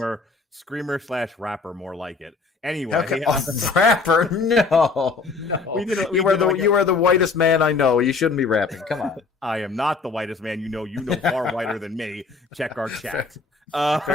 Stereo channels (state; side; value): quieter; right; 4.4 dB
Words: screamer/rapper, more like it. Anyway, okay. Rapper? No. You are the whitest man I know. You shouldn't be rapping. Come on. I am not the whitest man you know. You know far whiter than me. Check our chat.